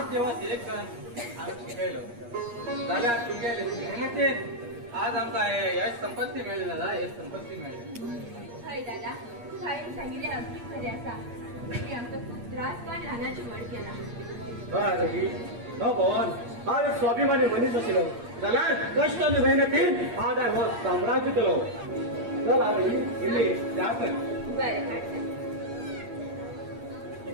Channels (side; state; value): left; late; 8.5 ms